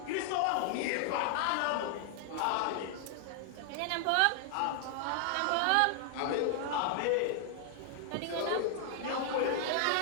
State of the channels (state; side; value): different; both; correlation 0.00